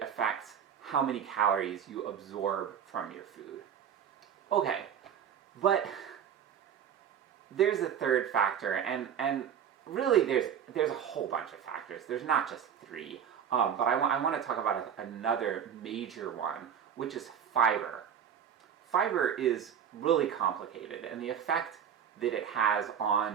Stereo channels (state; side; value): quieter; left; 8.5 dB